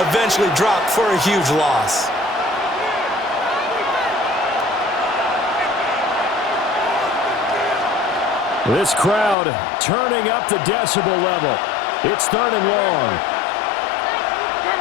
dropped for a huge loss. This crowd turning up the decibel level. It's 3rd and long.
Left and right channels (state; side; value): drops out; right; at 9.3 s